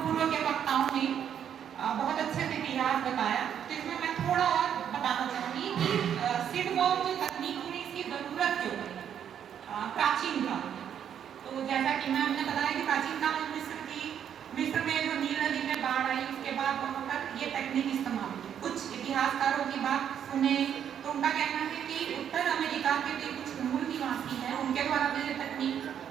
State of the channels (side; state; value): left; quieter; 9.0 dB